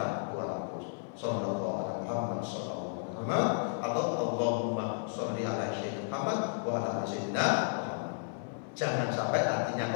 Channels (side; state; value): right; silent; 56 dB below the other